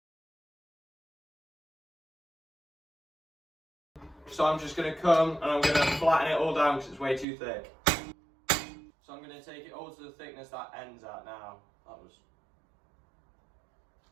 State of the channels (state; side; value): drops out; left; at 7.2 s